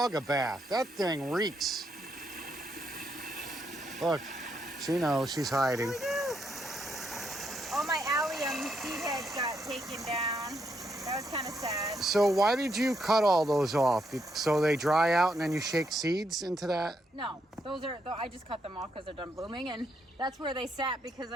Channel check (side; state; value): both; normal; correlation 0.77